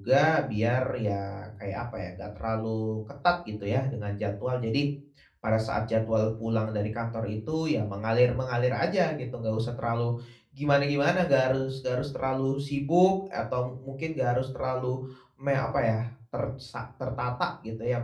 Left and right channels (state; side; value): identical; both; correlation 1.00